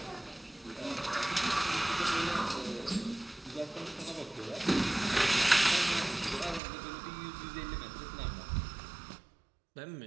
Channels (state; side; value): drops out; left; at 6.6 s